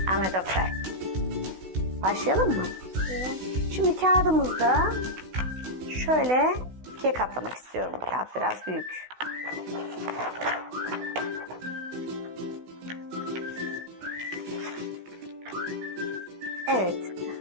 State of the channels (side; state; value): left; late; 16 ms